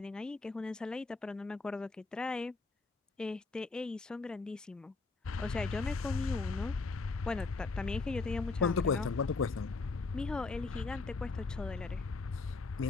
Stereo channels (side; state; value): right; quieter; 3.8 dB